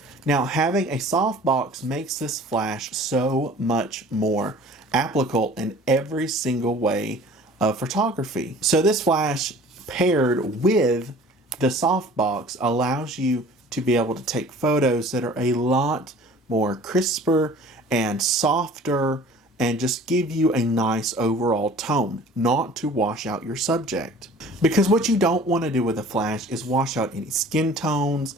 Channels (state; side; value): normal; both; correlation 0.47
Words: Now, having a softbox makes this flash so much more applicable in every single way of photography. So this flash paired with the softbox allows you to be able to take photos that are a lot more crisper and softer and just give you a nice overall tone, not to wash out your subject. Because what you don't want to do with a flash is wash out any skin tones,